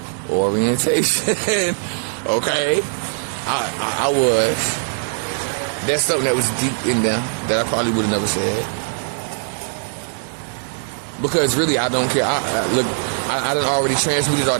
orientation. Okay, I was. That's something that was deep in there that I probably would have never said. Because really, I don't care. I done already transmuted all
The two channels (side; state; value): left; silent; digital silence